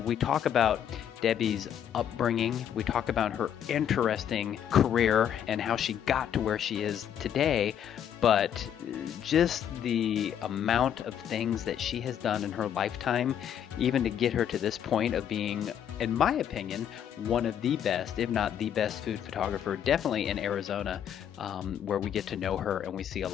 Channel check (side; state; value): right; quieter; 9.4 dB